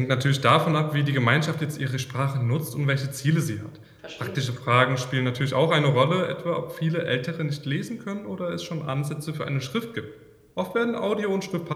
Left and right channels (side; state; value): both; identical; correlation 1.00